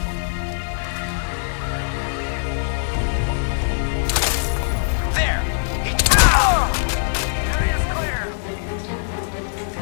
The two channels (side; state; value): right; silent; digital silence